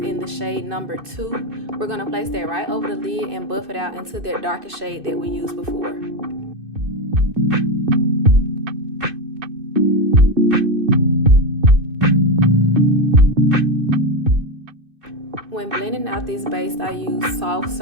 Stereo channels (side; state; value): left; late; 2.6 ms